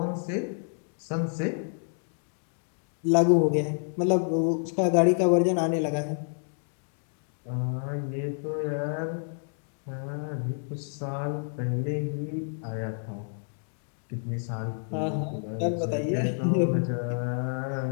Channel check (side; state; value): right; silent; 59 dB below the other